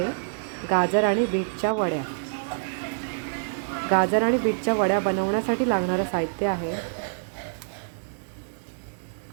गाजर आणि बीटच्या वड्या। गाजर आणि बीटच्या वड्या बनवण्यासाठी लागणारं साहित्य आहे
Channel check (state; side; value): silent; left; digital silence